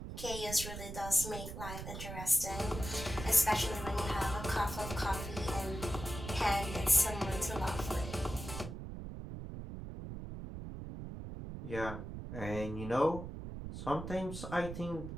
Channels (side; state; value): right; noise; rumble, 8 dB below the sound